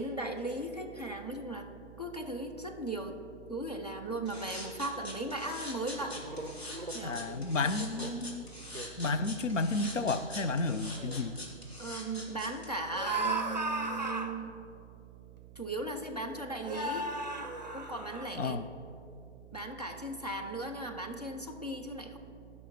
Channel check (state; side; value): noise; right; hum, 15 dB below the sound